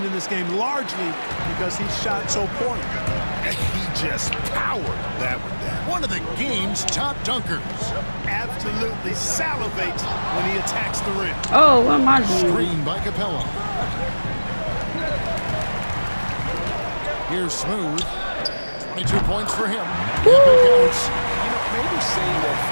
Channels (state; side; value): inverted; both; correlation -1.00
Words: in this game largely because he shot so poorly. He just powered that one down. One of the game's top dunkers. Absolutely salivates when he attacks the rim. Oh, what am I doing? Screen by Capella. Here's Smooth. 22 points for him. Woo! Counts. You know, maybe save that